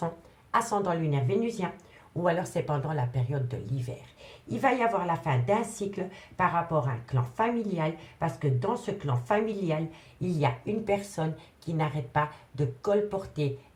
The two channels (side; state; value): both; identical; correlation 1.00